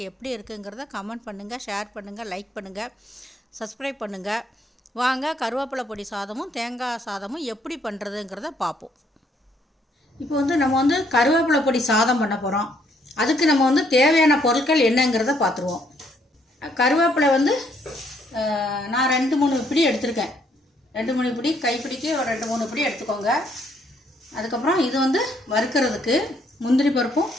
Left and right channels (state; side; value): normal; both; correlation 0.69